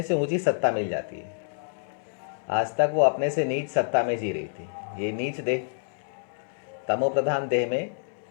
से ऊंची सत्ता मिल जाती है। आज तक वो अपने से नीच सत्ता में जी रही थी। ये नीच देह, तमो प्रधान देह में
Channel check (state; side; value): silent; right; digital silence